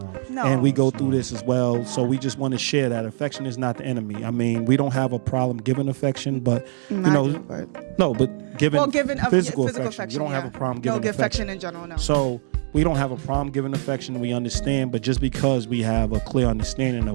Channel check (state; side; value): silent; left; digital silence